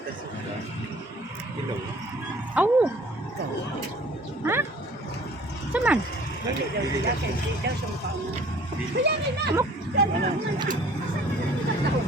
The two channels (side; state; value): both; normal; correlation 0.52